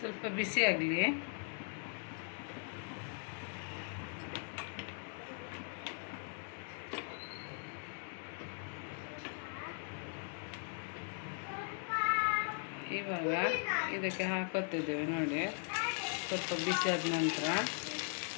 ಬಿಸಿ ಆಗಲಿ. ಇವಾಗ ಇದಕ್ಕೆ ಹಾಕೋತಿದ್ದೇವೆ. ನೋಡಿ, ಸ್ವಲ್ಪ ಬಿಸಿ ಆದ ನಂತರ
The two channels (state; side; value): silent; right; 52 dB below the other